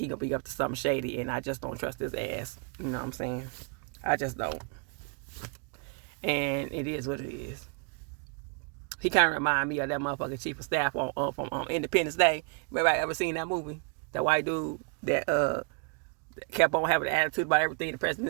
gonna be up to something shady, and I just don't trust his ass. You know what I'm saying? I just don't. And it is what it is. He kind of remind me of that motherfucking chief of staff from Independence Day. Everybody ever seen that movie? That white dude that kept on having an attitude about everything the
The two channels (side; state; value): left; quieter; 39.0 dB